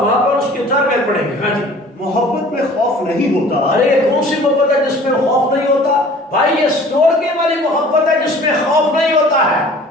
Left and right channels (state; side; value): normal; both; correlation 0.48